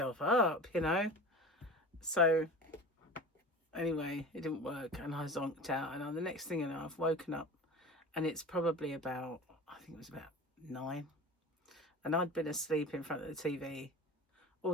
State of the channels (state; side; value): normal; both; correlation 0.34